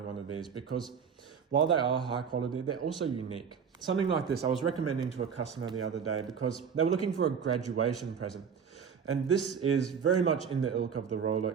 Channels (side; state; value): left; quieter; 6.8 dB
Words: one of these, because while they are high quality, they're also unique. Something like this I was recommending to a customer the other day because they were looking for a graduation present. And this is very much in the ilk of the